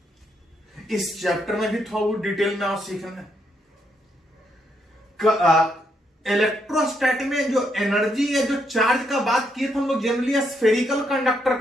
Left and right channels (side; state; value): both; normal; correlation 0.76